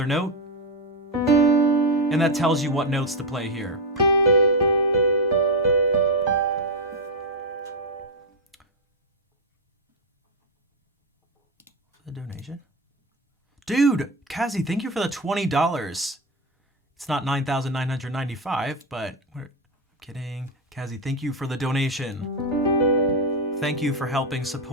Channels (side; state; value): both; normal; correlation 0.07